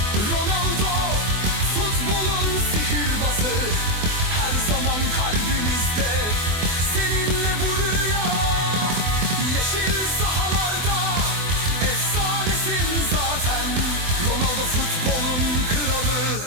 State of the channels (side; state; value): left; late; 24 ms